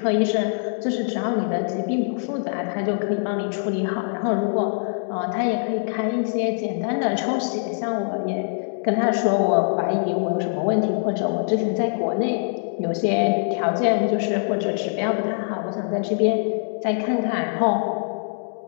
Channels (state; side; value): silent; right; digital silence